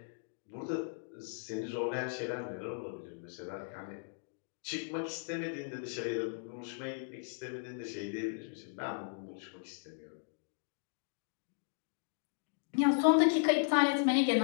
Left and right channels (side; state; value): right; silent; digital silence